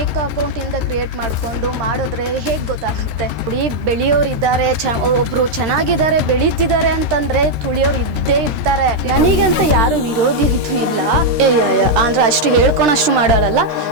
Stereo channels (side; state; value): left; late; 13 ms